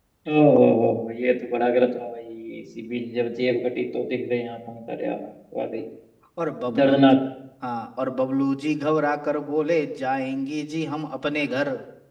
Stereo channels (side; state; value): both; identical; correlation 1.00